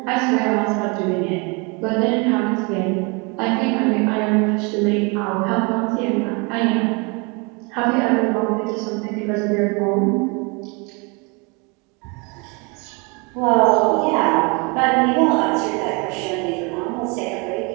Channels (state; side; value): quieter; left; 30.3 dB